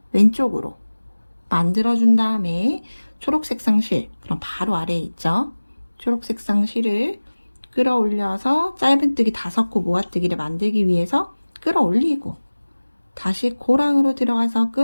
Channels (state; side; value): inverted; both; correlation -1.00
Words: 왼쪽으로 만들어준 다음에 초록색상 실, 그럼 바로 아래에 있죠. 초록색상 실을 끌어올려서 짧은뜨기 5코 모아뜨기를 만들기 위해서 끌어올리고, 다시 고랑으로 들어가서